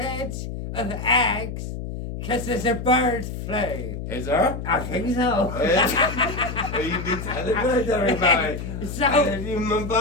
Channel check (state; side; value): noise; left; hum, 7 dB below the sound